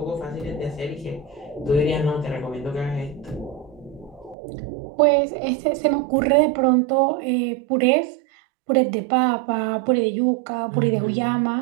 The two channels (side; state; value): left; drops out; at 4.4 s